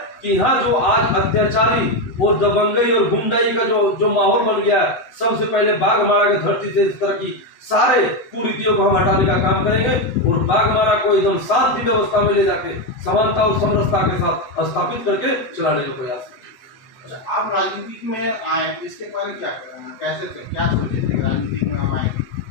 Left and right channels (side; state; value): right; late; 8.0 ms